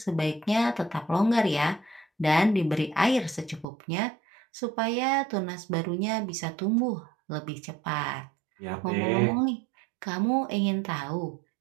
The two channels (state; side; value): drops out; left; at 3.7 s